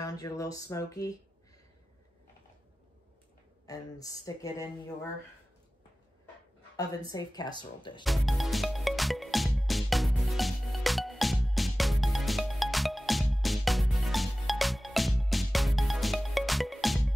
your little smoky, and stick it in your oven-safe casserole dish.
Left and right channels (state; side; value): normal; both; correlation 0.96